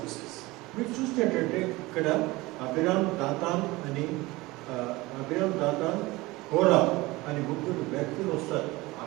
మీరు చూసినట్టంటే ఇక్కడ అబిరామ్ దాతాన్ కోరా అని ముగ్గురు వ్యక్తులు వస్తారు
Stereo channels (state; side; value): quieter; left; 21.0 dB